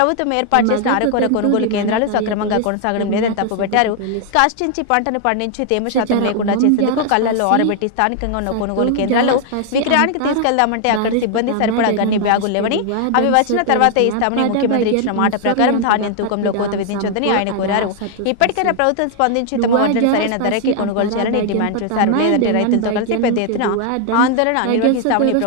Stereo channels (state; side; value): different; both; correlation 0.00